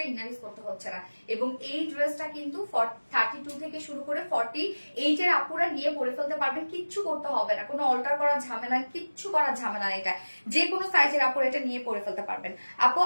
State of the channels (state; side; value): inverted; both; correlation -1.00